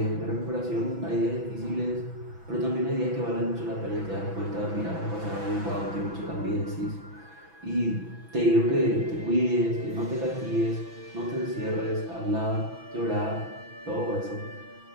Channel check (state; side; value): late; left; 6.1 ms